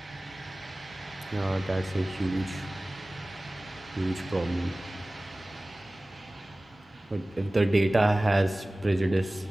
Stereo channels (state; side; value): normal; both; correlation 0.98